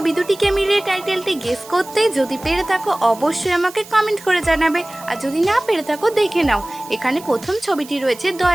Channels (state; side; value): noise; right; hiss, 18 dB below the sound